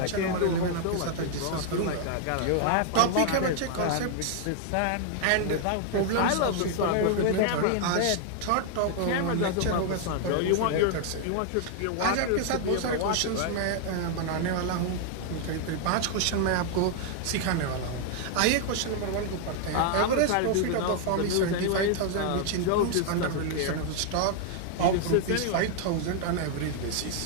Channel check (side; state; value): both; different; correlation 0.00